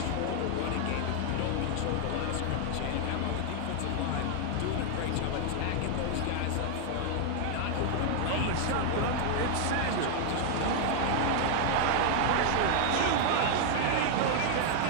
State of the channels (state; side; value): different; both; correlation 0.00